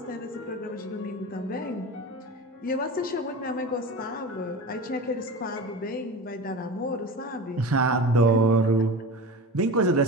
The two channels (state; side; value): normal; both; correlation 0.31